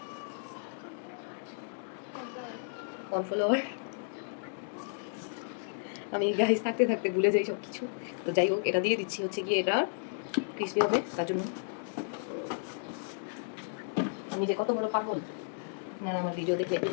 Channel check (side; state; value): right; silent; digital silence